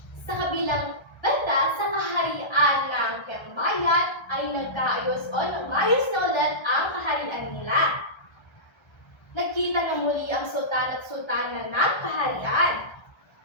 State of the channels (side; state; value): right; late; 1.3 ms